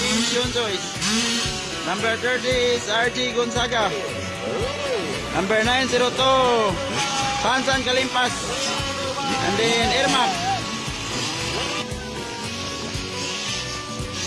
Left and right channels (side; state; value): both; identical; correlation 1.00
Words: Shunjoys. Number 30 is RG Gonzaga. Number 902, Sansan Kalimpas. And then Irma.